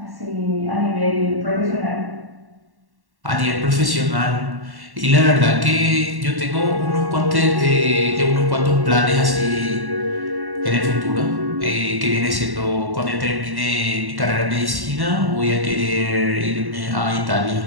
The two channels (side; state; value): left; late; 1.1 ms